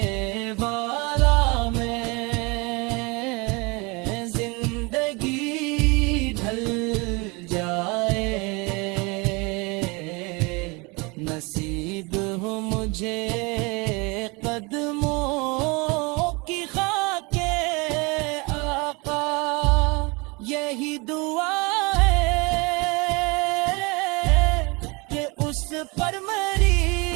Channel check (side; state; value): left; quieter; 27.5 dB